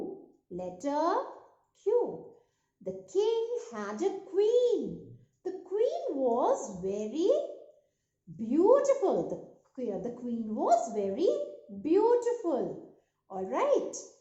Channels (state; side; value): identical; both; correlation 1.00